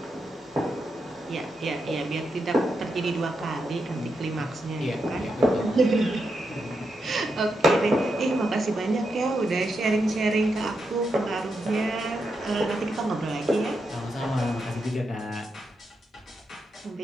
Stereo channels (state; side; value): normal; both; correlation 0.84